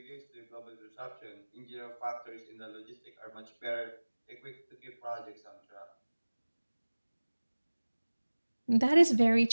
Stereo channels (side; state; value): both; inverted; correlation -1.00